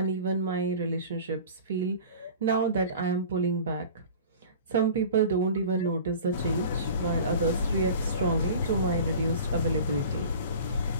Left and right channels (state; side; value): inverted; both; correlation -0.40